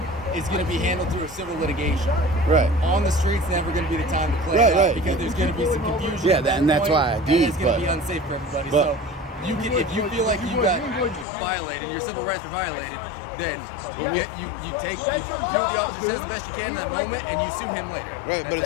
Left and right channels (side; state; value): right; drops out; at 11.2 s